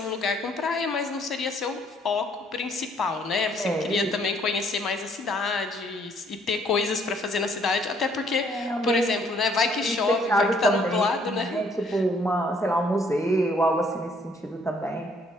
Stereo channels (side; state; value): both; normal; correlation 0.64